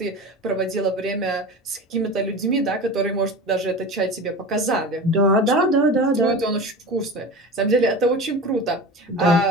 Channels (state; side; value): normal; both; correlation 0.31